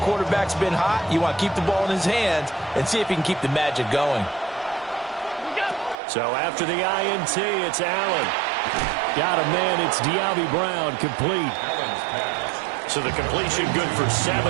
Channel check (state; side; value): drops out; left; at 6.0 s